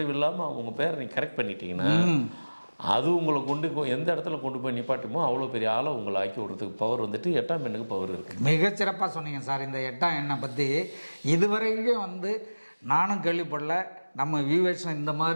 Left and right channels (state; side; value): inverted; both; correlation -1.00